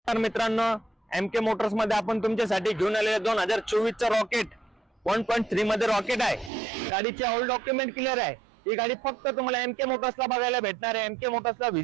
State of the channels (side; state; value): left; drops out; at 6.5 s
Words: नमस्कार मित्रांनो, MK मोटर्स मध्ये आपण तुमच्यासाठी घेऊन आलेले 2024 चा रॉकेट 1.3 मध्ये रॉकेट आहे। गाडीचे ऑल डॉक्युमेंट क्लिअर आहे। ही गाडी फक्त तुम्हाला MK मोटर्सला बघायला भेटणार आहे। MK मोटर्सला